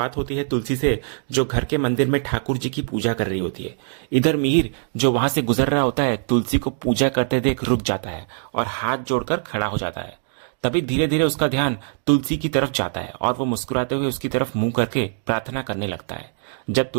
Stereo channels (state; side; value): silent; left; digital silence